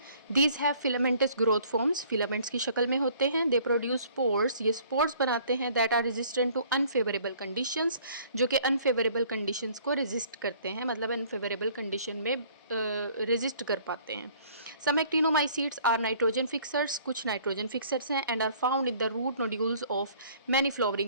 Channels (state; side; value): inverted; both; correlation -0.55